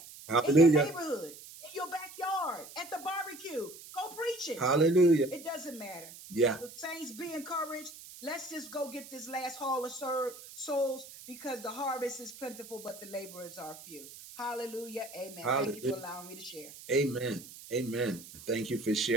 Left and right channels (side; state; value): right; noise; hiss, 16 dB below the sound